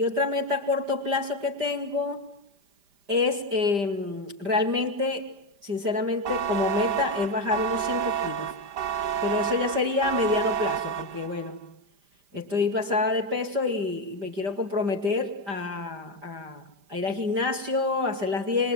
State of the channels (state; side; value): late; left; 5.0 ms